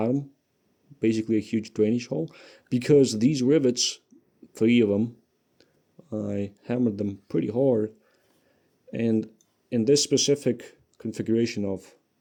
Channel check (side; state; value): both; identical; correlation 1.00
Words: Basically a huge drainage hole. Because these rivets, 3 of them, I hammered them pretty hard. And in this specific configuration of